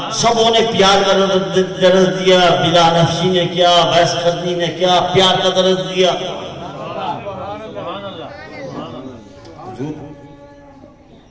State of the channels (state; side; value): identical; both; correlation 1.00